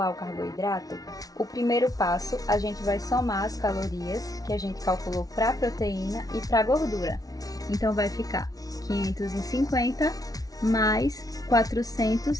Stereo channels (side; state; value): right; late; 0.18 ms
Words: o carboidrato, o primeiro passo, a gente vai somar as calorias que a gente calculou para a proteína e para a gordura. Então, vai ficar 550 mais